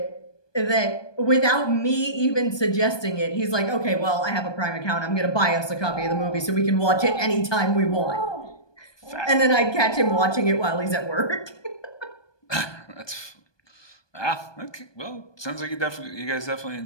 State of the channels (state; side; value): late; right; 1.2 ms